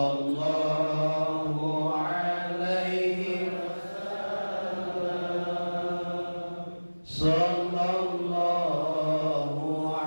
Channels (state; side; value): inverted; both; correlation -1.00